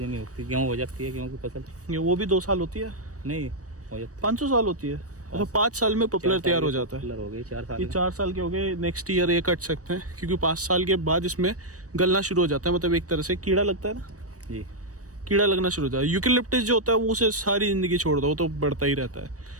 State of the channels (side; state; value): left; late; 0.66 ms